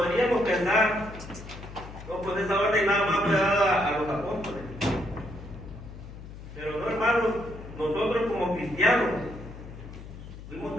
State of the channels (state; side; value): noise; left; hum, 13 dB below the sound